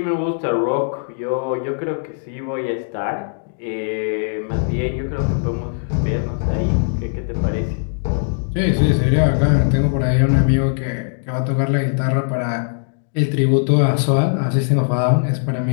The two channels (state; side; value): silent; right; digital silence